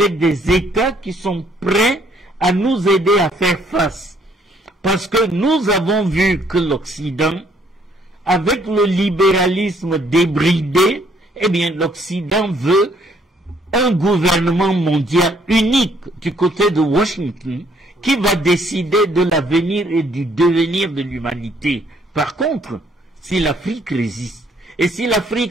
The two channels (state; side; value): normal; both; correlation 0.65